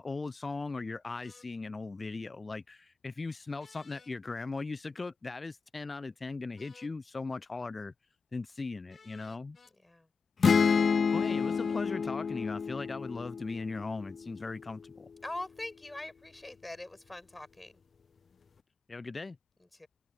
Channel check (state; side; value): quieter; right; 4.7 dB